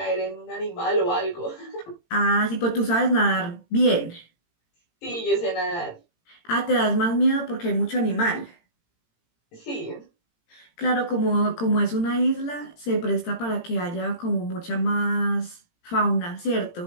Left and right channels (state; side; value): late; right; 18 ms